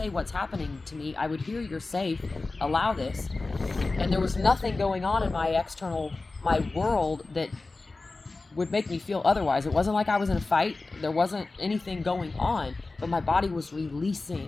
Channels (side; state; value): right; quieter; 3.5 dB